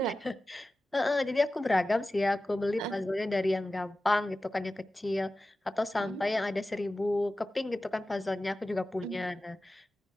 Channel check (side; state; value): both; normal; correlation 0.95